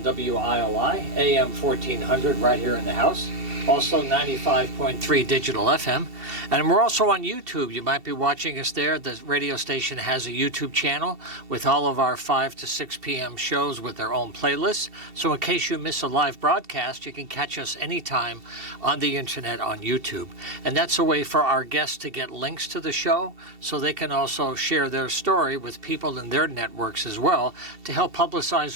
WILI, AM 1400 right here in the house. Also 95.3 digital FM. And we're also on YouTube. You might be watching us there. The radio station has a YouTube channel with all of our 5 to 6 p.m. shows with their own playlists. So in case you miss a live broadcast, you can catch us anytime on the internet on YouTube. And that's a way for our guests to get links to the show so they can also share their story with people in their networks as well to help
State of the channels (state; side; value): late; left; 2.7 ms